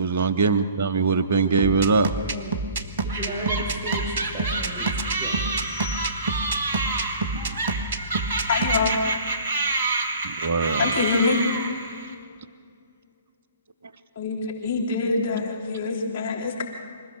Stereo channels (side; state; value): both; inverted; correlation -0.48